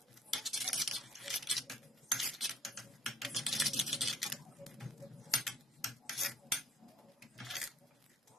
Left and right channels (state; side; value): normal; both; correlation 0.55